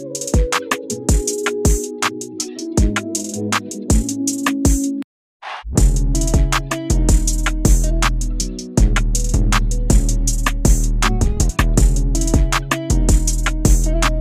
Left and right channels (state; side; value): identical; both; correlation 1.00